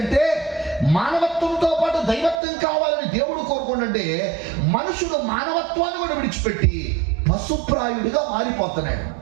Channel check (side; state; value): left; drops out; at 2.4 s